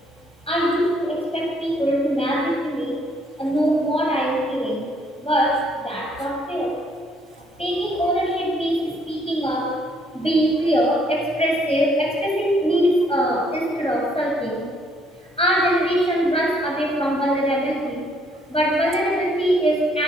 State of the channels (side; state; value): both; normal; correlation 0.67